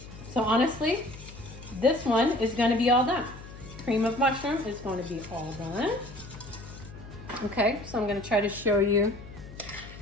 so honestly, this one is going to be all done. Cream of mushroom is going to be all done. Okay, so I'm going to try to show you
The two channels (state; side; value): noise; left; hum, 15 dB below the sound